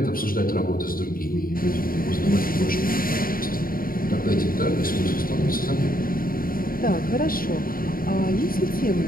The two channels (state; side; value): late; right; 0.42 ms